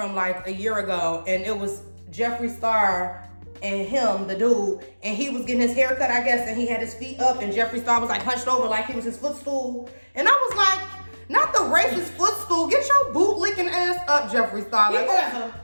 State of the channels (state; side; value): inverted; both; correlation -1.00